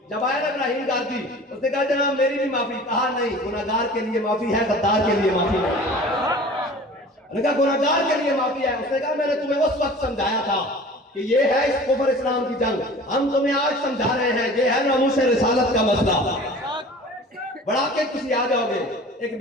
جب آیا نا ابراہیم گاردی اس نے کہا جناب میری بھی معافی، کہا نہیں گناہگار کے لیے معافی ہے غدار کے لیے معافی نہیں، نے کہا گناہگار کے لیے معافی ہے، اس نے کہا میں نے تمہیں اس وقت سمجھایا تھا کہ یہ ہے اس کفر اسلام کی جنگ. ہم تمہیں آج سمجھا رہے ہیں یہ ہے ناموس رسالت کا مسئلہ. بڑا کے کسی آ جاؤ گے. ایک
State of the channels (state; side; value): normal; both; correlation 0.42